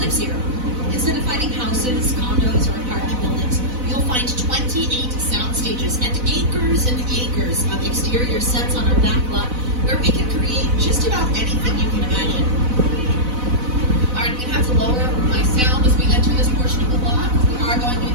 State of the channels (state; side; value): late; left; 4.0 ms